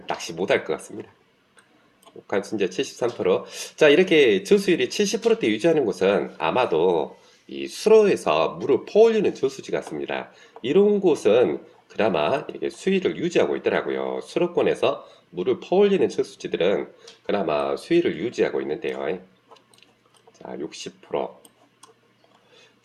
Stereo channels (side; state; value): both; identical; correlation 1.00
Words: 낚시 못할 것 같습니다. 관순자 73%. 자, 이렇게 저수율이 70%대 유지하는 곳은 아마도 이 수로에서 물을 퍼올리는 저수지 같습니다. 이런 곳은 그나마 이렇게 수위를 유지하고 있더라고요. 수로권에서 물을 퍼올리는 저수지들은 그나마 수위를 유지하고 있는데요. 자, 60%.